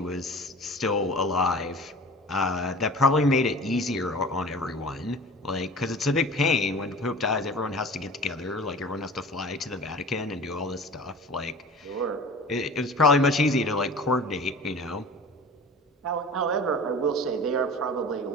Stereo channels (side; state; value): both; normal; correlation 0.40